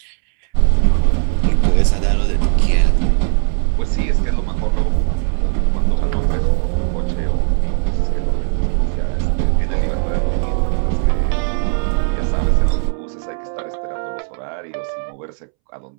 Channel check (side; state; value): left; silent; 68 dB below the other